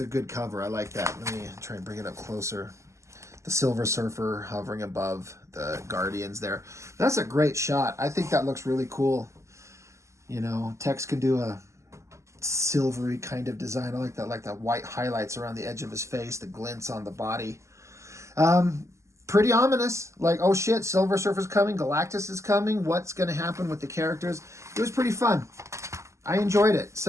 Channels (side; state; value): left; late; 0.14 ms